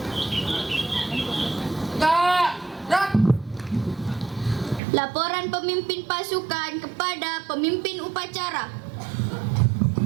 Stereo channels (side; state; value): left; drops out; at 4.8 s